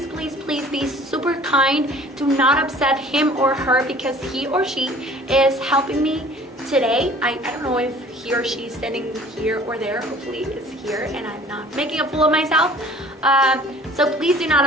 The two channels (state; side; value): normal; both; correlation 0.50